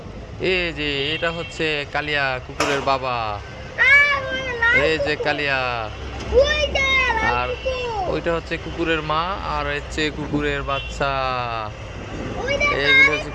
এই যে এটা হচ্ছে কালিয়া কুকুরের বাবা। মানে লাল এই যে কুকুর। কালিয়া। ওই যে লাল আর কুকুর। ওইটা হচ্ছে কুকুরের মা, আর হচ্ছে কুকুরের বাচ্চা। ওই দেখো এইগুলো হচ্ছে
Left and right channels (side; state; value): both; identical; correlation 1.00